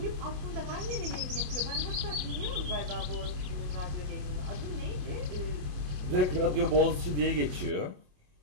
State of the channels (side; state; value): left; late; 27 ms